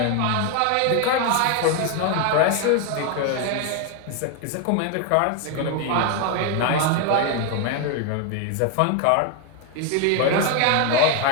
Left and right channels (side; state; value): both; different; correlation 0.01